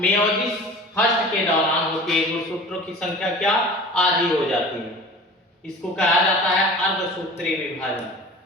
फर्स्ट के दौरान होती है। गुणसूत्रों की संख्या क्या आधी हो जाती है। इसको कहा जाता है अर्धसूत्रीय विभाजन।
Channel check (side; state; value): both; normal; correlation 0.40